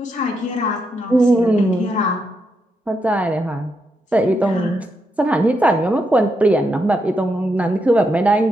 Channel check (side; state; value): both; normal; correlation 0.82